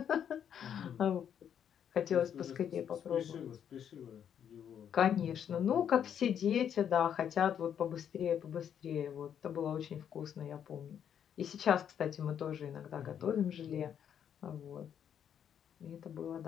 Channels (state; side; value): quieter; right; 8.8 dB